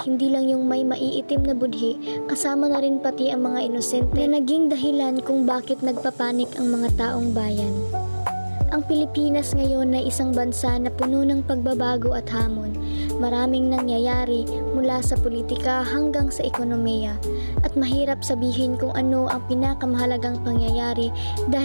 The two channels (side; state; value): both; inverted; correlation -1.00